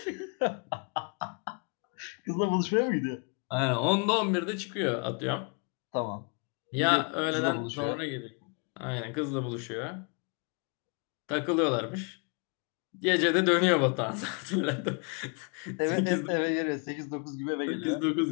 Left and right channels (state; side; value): quieter; right; 36.7 dB